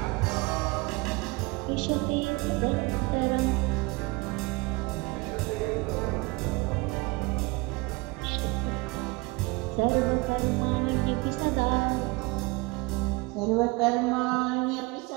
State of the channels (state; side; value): quieter; left; 25.2 dB